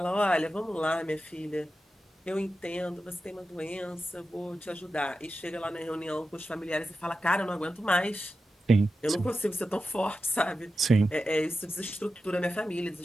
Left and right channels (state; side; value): normal; both; correlation 0.91